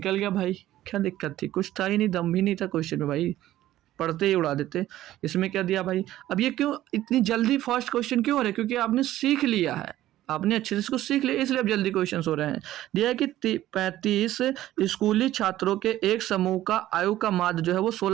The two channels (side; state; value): left; quieter; 14.2 dB